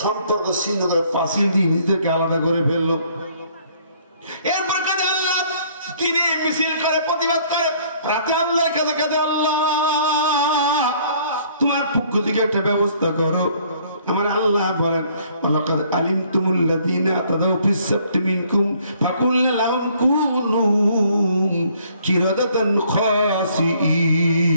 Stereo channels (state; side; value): inverted; both; correlation -0.61